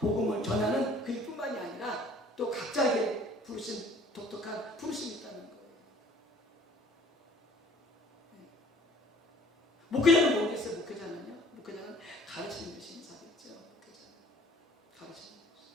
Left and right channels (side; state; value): both; normal; correlation 0.53